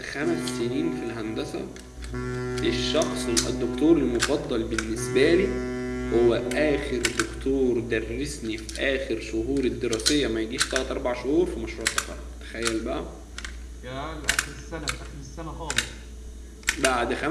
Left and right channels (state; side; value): identical; both; correlation 1.00